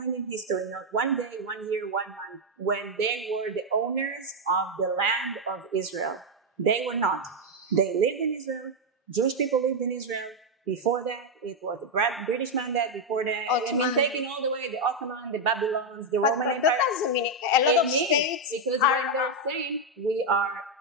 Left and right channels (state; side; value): normal; both; correlation 0.02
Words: in history, not one day, 1 year, 1 month, when they were the owners of the land of Israel. They were not. They lived in Israel. Jewish people lived in Israel. Before that, it was the British mandate. Before that, taking all the way the Ottoman, the Babylons, the Roman Empire. That doesn't mean a lot of states. Because when they're saying we are